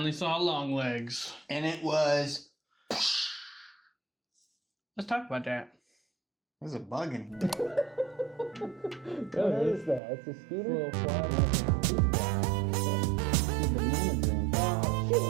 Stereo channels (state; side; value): drops out; left; at 10.0 s